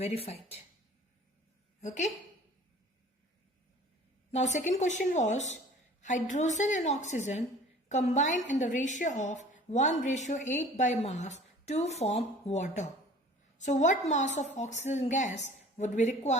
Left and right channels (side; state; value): both; normal; correlation 0.47